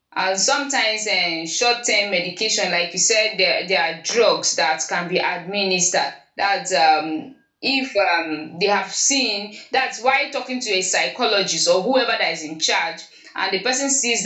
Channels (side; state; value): both; identical; correlation 1.00